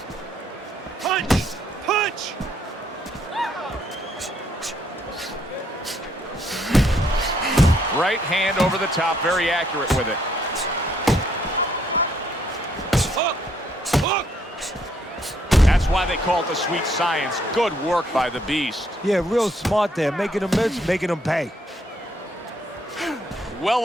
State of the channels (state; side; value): normal; both; correlation 0.70